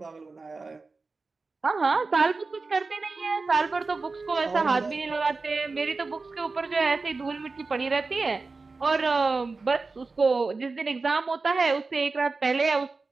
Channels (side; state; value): left; quieter; 3.9 dB